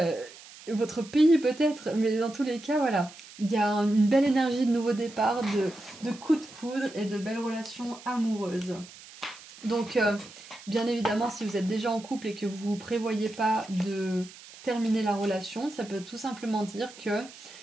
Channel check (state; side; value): noise; right; hiss, 19 dB below the sound